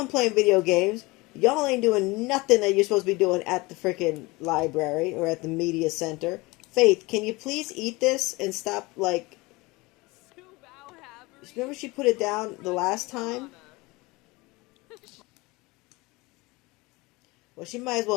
playing video games. Y'all ain't doing nothing that you're supposed to be doing at the freaking library or at the media center. Faith, can you please eat this and stop, like... Remember she put it down the last time? Well, she might as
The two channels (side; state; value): right; quieter; 23.2 dB